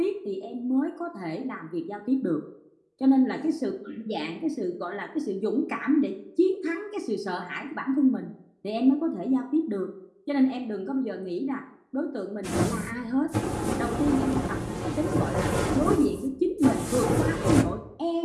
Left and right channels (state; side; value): identical; both; correlation 1.00